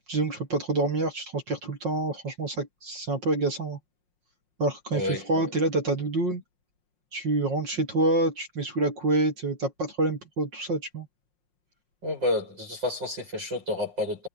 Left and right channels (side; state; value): left; late; 5.6 ms